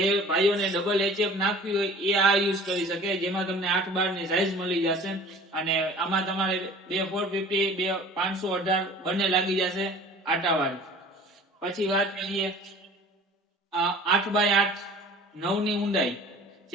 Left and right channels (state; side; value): normal; both; correlation 0.45